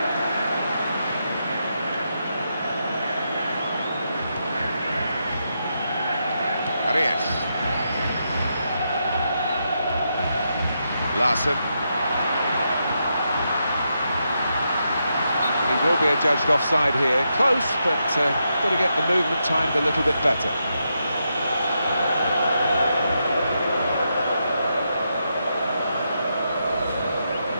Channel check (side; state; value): both; inverted; correlation -0.83